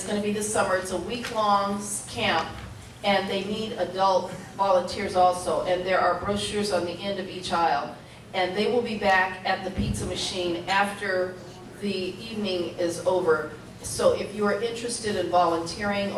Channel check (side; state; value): both; identical; correlation 1.00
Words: going to be this summer. It's a week-long camp, and they need adult volunteers also. And there are brochures on the end of each aisle. And they will be back at the pizza machine after the evening is over. So if you are interested in volunteering,